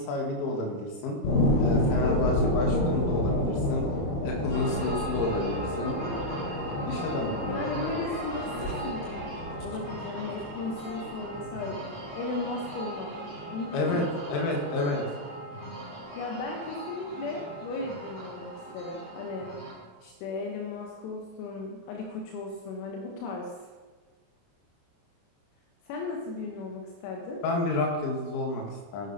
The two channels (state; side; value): late; right; 27 ms